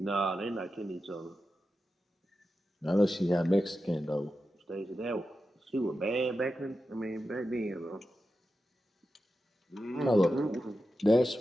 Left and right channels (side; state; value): both; normal; correlation 0.91